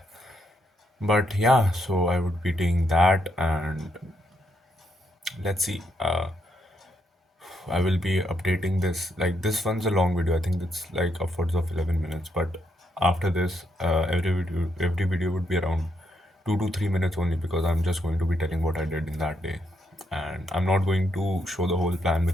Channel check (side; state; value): both; normal; correlation 0.78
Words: But yeah, so I would be doing that, and let's see. I will be updating this. Like this one's a long video. I think it's like upwards of 11 minutes. But after this, every video would be around 2 to 3 minutes only because I'm just going to be telling what I did in that day, and I'm not going to show the whole plan